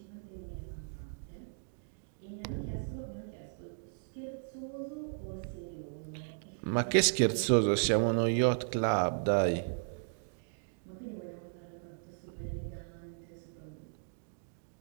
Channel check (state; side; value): silent; left; digital silence